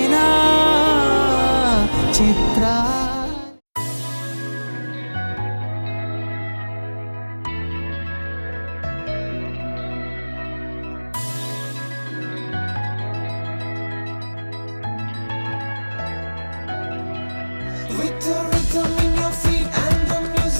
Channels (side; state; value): both; inverted; correlation -1.00